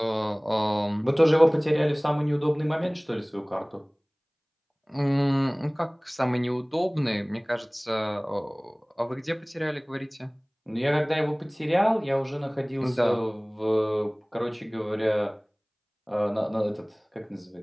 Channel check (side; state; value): both; identical; correlation 1.00